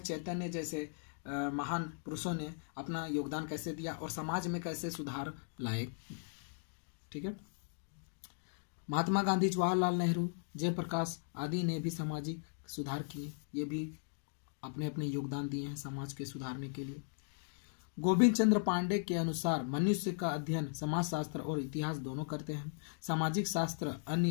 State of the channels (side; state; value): right; silent; digital silence